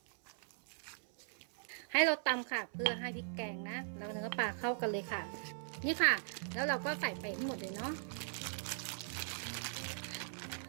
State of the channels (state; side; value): silent; left; 51 dB below the other